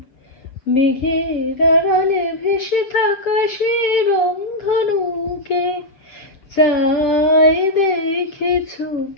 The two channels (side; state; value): right; late; 7.7 ms